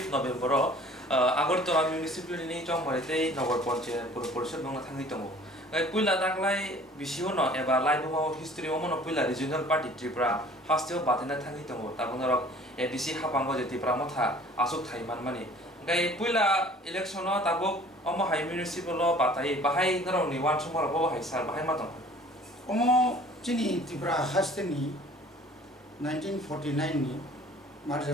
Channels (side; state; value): both; normal; correlation 0.50